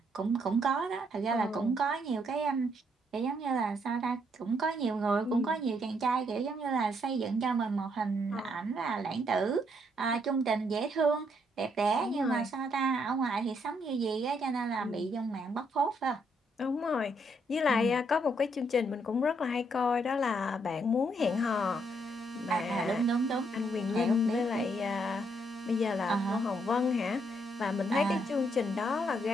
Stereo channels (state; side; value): normal; both; correlation 0.73